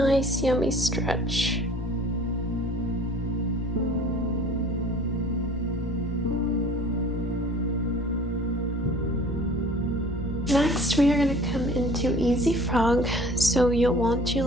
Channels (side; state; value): both; normal; correlation 0.48